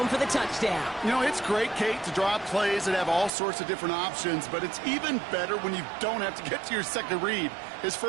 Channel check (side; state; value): left; drops out; at 3.3 s